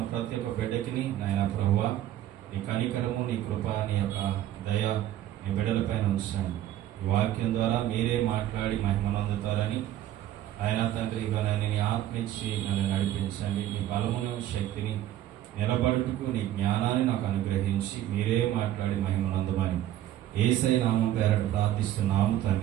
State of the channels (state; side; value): quieter; left; 12.8 dB